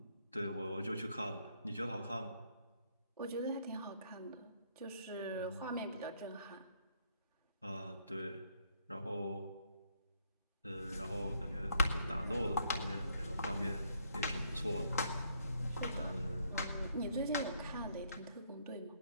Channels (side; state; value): both; inverted; correlation -0.70